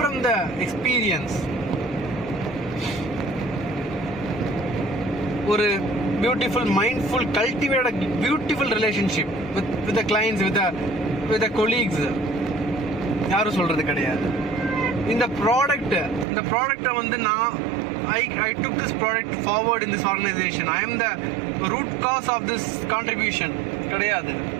the experience, ஒரு beautiful, mindful, cultivate a beautiful relationship with the clients, with the colleagues, யாரும் சொல்றது கிடையாது. இந்த ப்ராடக்ட்டை வந்து நான் I took this product forward in this organization. I am the root cause of this contribution. கிடையாது.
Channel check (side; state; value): left; drops out; at 16.2 s